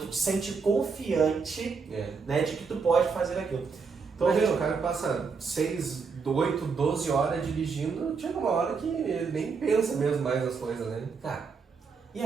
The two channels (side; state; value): left; quieter; 5.2 dB